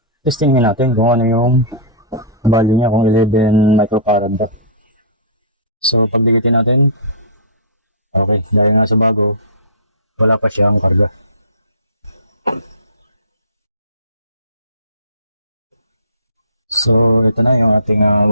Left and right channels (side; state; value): both; inverted; correlation -0.30